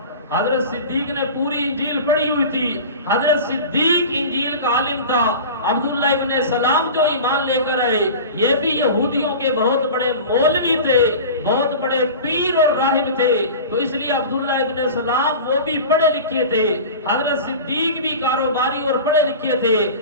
حضرت صدیق نے پوری انجیل پڑھی ہوئی تھی، حضرت صدیق انجیل کا عالم تھا۔ عبداللہ ابن سلام جو ایمان لے کر آئے، یہ بھی یہودیوں کے بہت بڑے مولوی تھے، بہت بڑے پیر اور راہب تھے، تو اس لیے عبداللہ ابن سلام وہ بھی پڑھے لکھے تھے۔ حضرت صدیق بھی کاروباری اور پڑھے لکھے تھے۔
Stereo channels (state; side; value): inverted; both; correlation -0.34